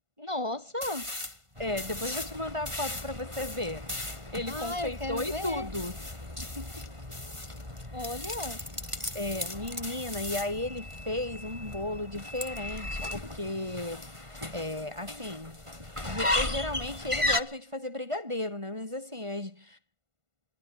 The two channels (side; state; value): left; late; 1.5 ms